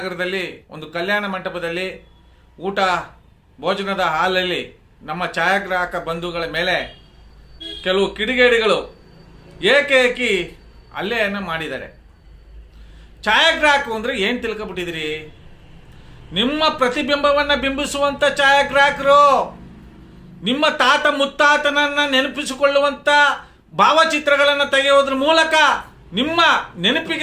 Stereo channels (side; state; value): both; identical; correlation 1.00